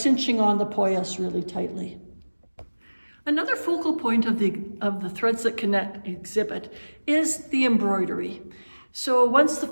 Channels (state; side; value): inverted; both; correlation -1.00